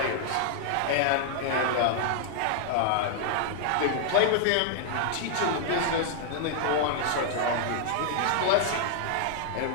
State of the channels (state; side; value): different; both; correlation 0.00